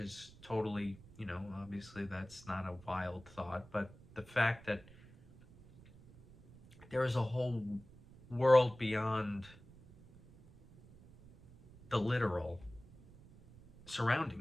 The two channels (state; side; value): noise; right; rumble, 22 dB below the sound